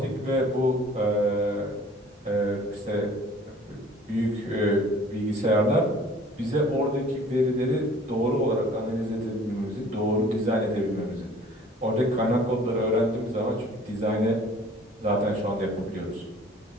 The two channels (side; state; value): both; normal; correlation 0.51